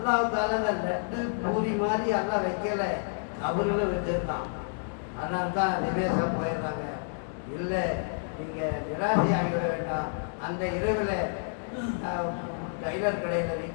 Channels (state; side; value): silent; right; digital silence